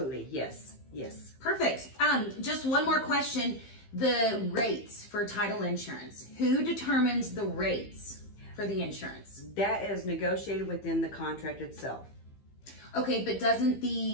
yes. Yes. Perfect. Just one more question. The rates for title insurance. Who determines the rates for the insurance? That is negotiated within the contract itself. Okay, but doesn't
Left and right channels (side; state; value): right; late; 15 ms